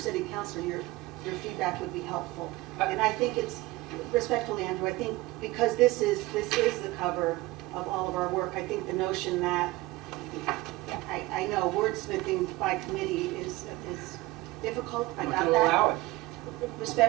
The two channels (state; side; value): quieter; left; 19.3 dB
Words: councilor, your feedback would be helpful. And I think it's, respectfully, Andrew, I think because this is the cover of all of our work, I think the notion that, I know wordsmithing by committee is difficult, I got that. Allow it.